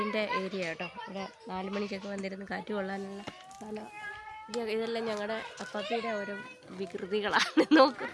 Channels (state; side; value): identical; both; correlation 1.00